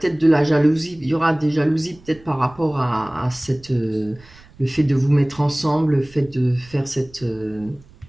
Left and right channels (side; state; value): right; noise; rumble, 25 dB below the sound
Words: de la jalousie. Il y aura des jalousies peut-être par rapport à le fait de vous mettre ensemble, le fait de faire